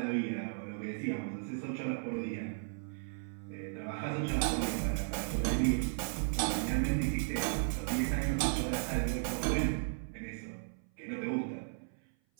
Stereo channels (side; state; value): left; silent; 54 dB below the other